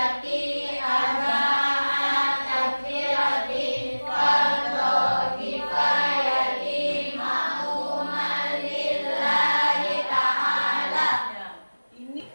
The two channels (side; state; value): both; inverted; correlation -1.00